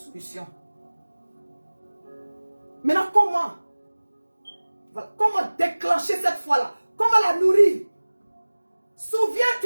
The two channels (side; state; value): both; inverted; correlation -1.00